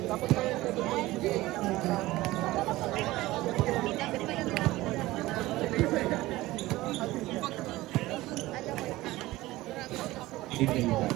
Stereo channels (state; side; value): quieter; left; 18.1 dB